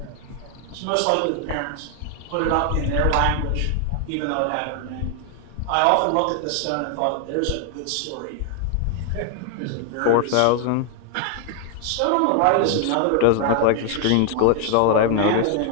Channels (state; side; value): different; both; correlation 0.00